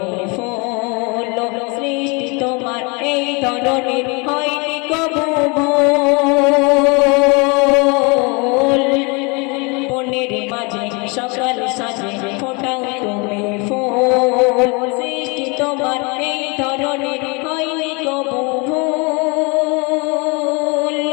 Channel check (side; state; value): right; quieter; 30.0 dB